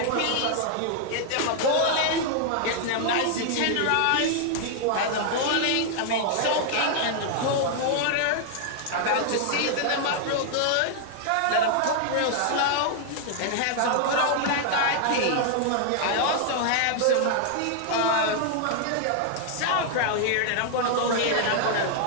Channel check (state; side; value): different; both; correlation 0.00